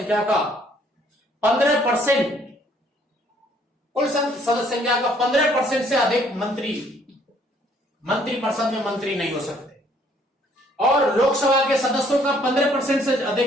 का 15%, कुल सदस्य संख्या का 15% से अधिक मंत्री परिषद में मंत्री नहीं हो सकते, और लोकसभा के सदस्यों का 15% से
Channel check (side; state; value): both; normal; correlation 0.63